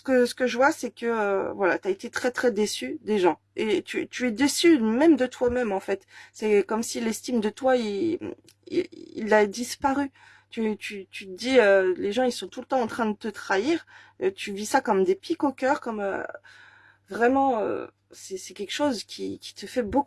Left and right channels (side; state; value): both; identical; correlation 1.00